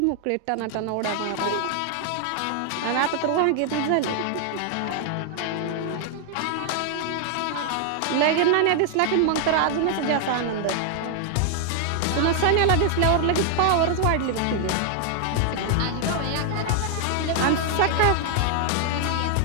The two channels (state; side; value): different; both; correlation 0.00